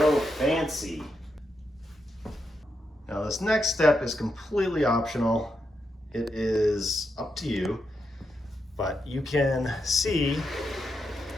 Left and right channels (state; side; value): normal; both; correlation 0.84